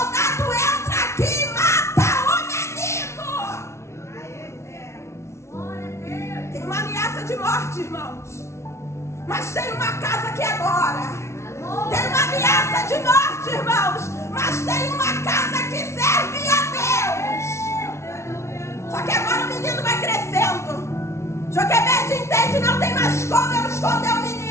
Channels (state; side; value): late; right; 0.13 ms